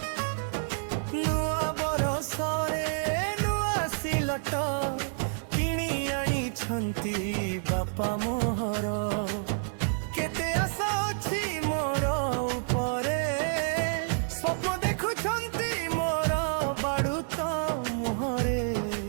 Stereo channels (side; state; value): left; silent; 59 dB below the other